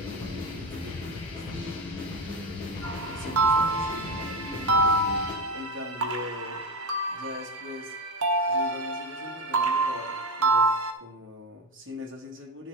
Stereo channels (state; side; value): normal; both; correlation 0.15